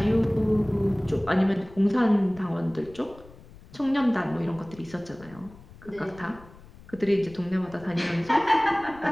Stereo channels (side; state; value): left; noise; rumble, 21 dB below the sound